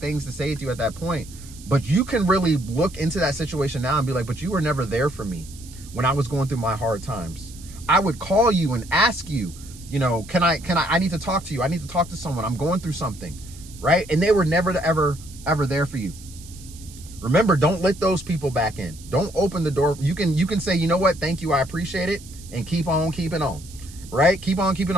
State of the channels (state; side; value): noise; right; hiss, 19 dB below the sound